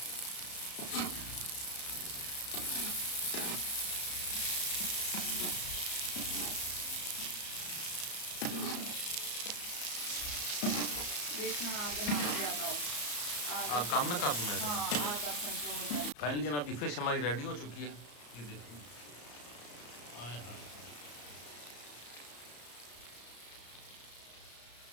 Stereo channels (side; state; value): right; late; 34 ms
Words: देखना आगे ना ज़्यादा हो, आग काम ना कर दूँ मैं। हाँ आग आप कंट्रोल कर। फाइनली जनाब की फिश हमारी रेडी हो चुकी है। ये देखिए आए हाय